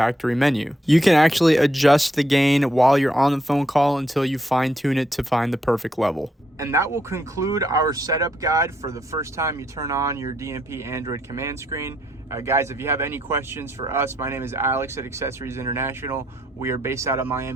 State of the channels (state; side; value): normal; both; correlation 0.75